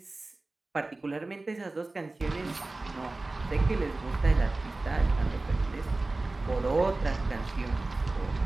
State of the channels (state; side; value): quieter; left; 3.1 dB